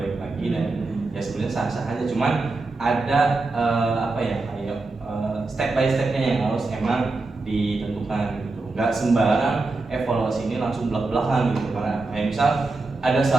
lagi dan ya sebenarnya sah-sah aja. Cuman ada kayak step by stepnya yang harus emang ditentukan gitu. Nggak sembarang evaluasi ini langsung belak-belakan gitu. Karena kayak misal ada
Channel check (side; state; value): left; quieter; 3.5 dB